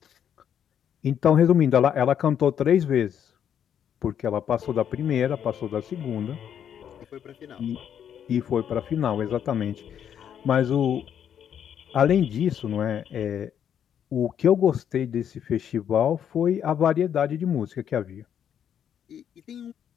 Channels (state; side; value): quieter; right; 9.0 dB